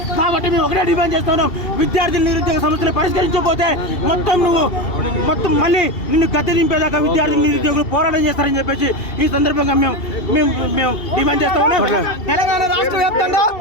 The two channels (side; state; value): right; late; 2.7 ms